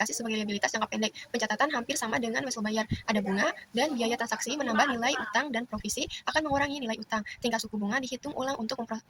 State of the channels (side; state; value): both; identical; correlation 1.00